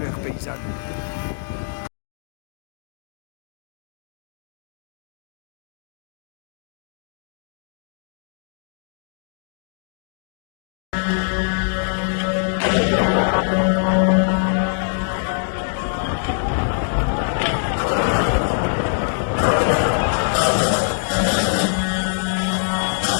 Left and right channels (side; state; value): right; silent; digital silence